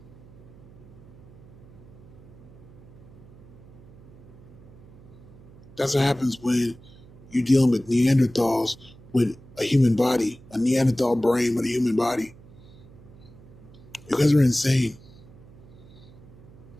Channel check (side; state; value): right; noise; hum, 21 dB below the sound